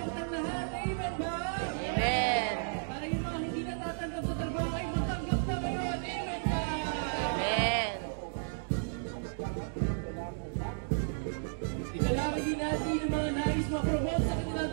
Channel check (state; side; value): silent; left; digital silence